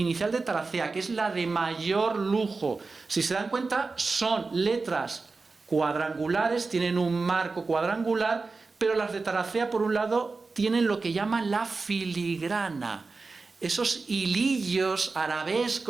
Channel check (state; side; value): quieter; left; 4.0 dB